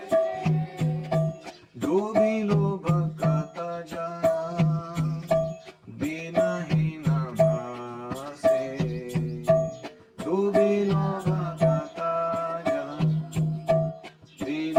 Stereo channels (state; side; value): identical; both; correlation 1.00